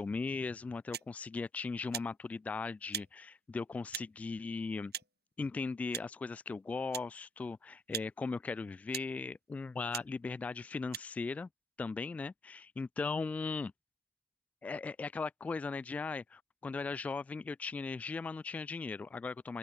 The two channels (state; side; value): quieter; right; 3.1 dB